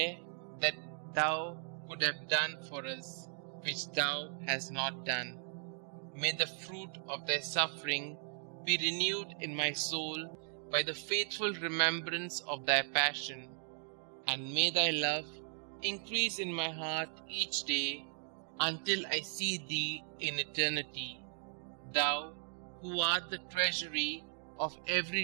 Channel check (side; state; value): left; silent; 53 dB below the other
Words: that thou could have done for us, which thou hast not done? May the fruit of thy suffering be renewed in my soul by the faithful remembrance of thy passion, and may thy love increase in my heart each day until I see thee in eternity, thou who art the treasury of